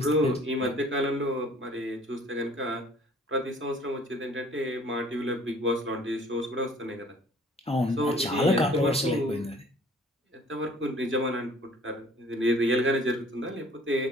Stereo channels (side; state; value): both; normal; correlation 0.53